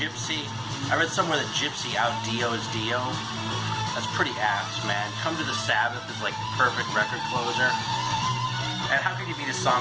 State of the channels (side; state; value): both; identical; correlation 1.00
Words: I read somewhere that Gypsy out-Dio is Dio. That's pretty apt, man. Come to the Sabbath is like the perfect record closer. And how can you beat a